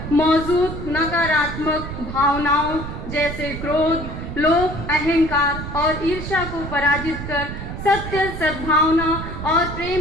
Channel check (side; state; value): right; noise; rumble, 8 dB below the sound